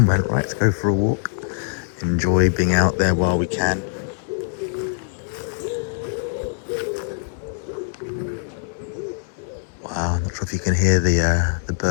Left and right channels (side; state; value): right; silent; digital silence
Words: went, right, let's go for a walk. Enjoy being out there while we can. Wow, I'm not sure if you can hear the